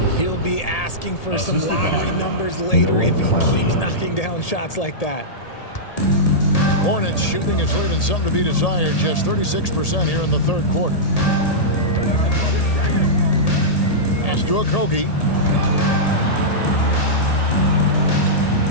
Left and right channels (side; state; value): right; late; 1.8 ms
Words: He'll be asking for some lottery numbers later if he keeps knocking down shots like that. Hornets shooting is leaving something to be desired. Just 36% here in the third quarter. Pass to Okogie.